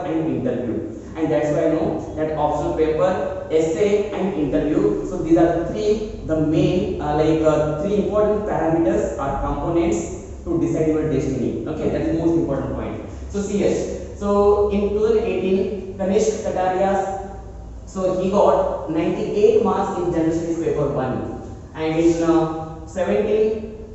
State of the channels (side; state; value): both; identical; correlation 1.00